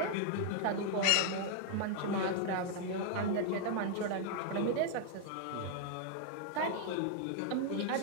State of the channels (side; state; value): both; different; correlation 0.00